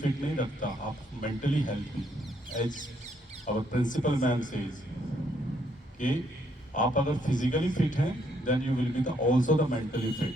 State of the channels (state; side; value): normal; both; correlation 0.71